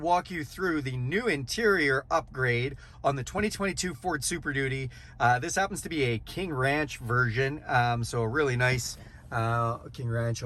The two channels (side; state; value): both; identical; correlation 1.00